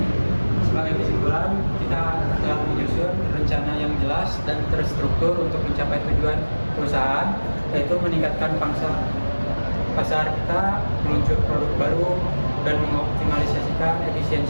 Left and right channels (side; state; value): both; inverted; correlation -1.00